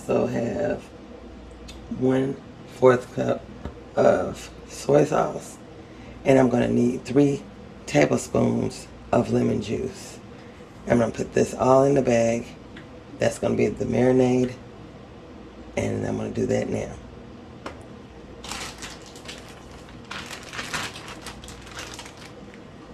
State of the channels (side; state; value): both; identical; correlation 1.00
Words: have 1/4 cup of soy sauce. And I'm going to need 3 tablespoons of lemon juice. I'm going to put this all in the bag. That's going to be the marinade. And I'm going to do that now.